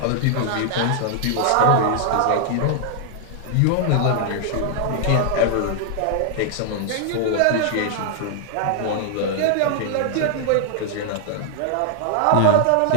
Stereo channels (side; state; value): both; different; correlation 0.00